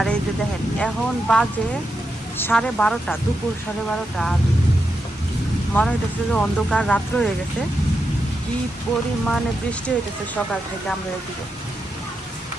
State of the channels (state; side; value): normal; both; correlation 0.86